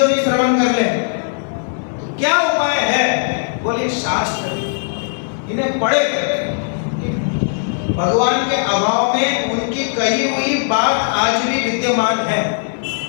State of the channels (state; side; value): silent; right; 67 dB below the other